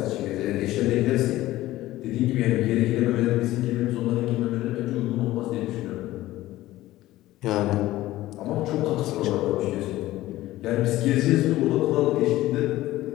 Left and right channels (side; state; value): right; quieter; 16.1 dB